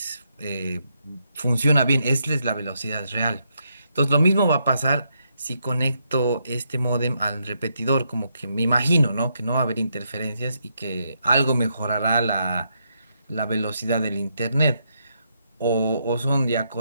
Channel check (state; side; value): inverted; both; correlation -0.79